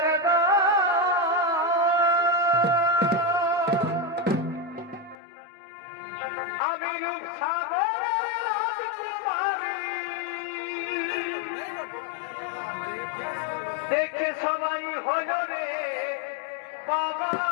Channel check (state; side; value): drops out; right; at 5.2 s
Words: দেখে সবাই হলো রে বাবা,